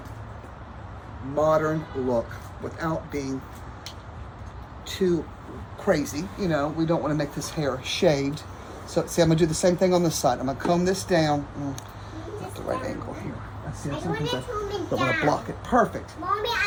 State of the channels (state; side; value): identical; both; correlation 1.00